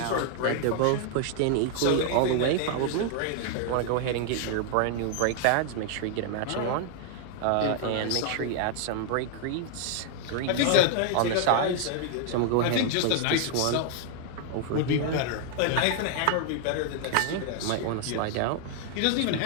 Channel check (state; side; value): different; both; correlation 0.00